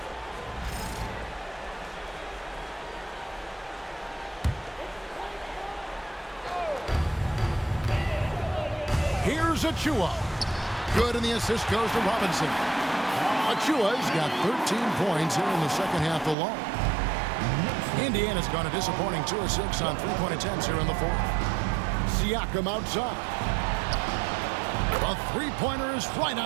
Here's Achua. Good, and the assist goes to Robinson. Achua's got 13 points here in the second half alone. Indiana's gone a disappointing 2 of 6 on 3-point attempts here in the fourth. Siakam outside. A three-pointer is right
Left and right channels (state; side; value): drops out; left; at 16.4 s